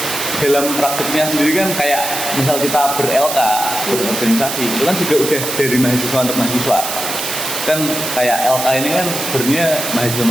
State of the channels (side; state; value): right; noise; hiss, 4 dB below the sound